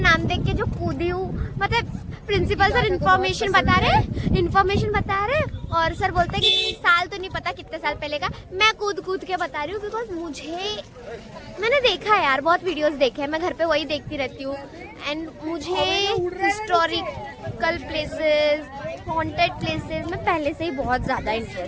देख के जो कूदी हूँ, मतलब प्रिंसिपल सर इन्फॉर्मेशन बता रहे और सर बोलते हैं कि साल तो नहीं पता कितने साल पहले का, मैं कूद के बता रही हूँ बिकॉज मैंने देखा है यार, बहुत वीडियोस देखे हैं, मैं घर पे वही देखती रहती हूँ एंड मुझे हिस्टोरिकल प्लेसेस, हॉन्टेड प्लेसेस में पहले से ही बहुत ज़्यादा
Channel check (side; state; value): both; identical; correlation 1.00